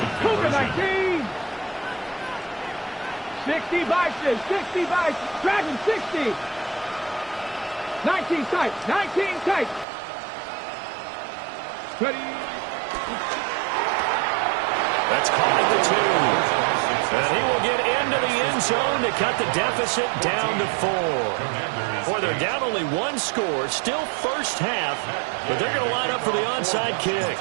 Cougar 19. 60 by 6, 60 by 6. Dragon 60. 19 tight, 19 tight. Ready. That's caught at the 2. And he will get into the end zone to cut the deficit down to 4. Boy, they're down only 1 score, still first half, but they're going to line up for the onside kick.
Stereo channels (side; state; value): left; drops out; at 9.9 s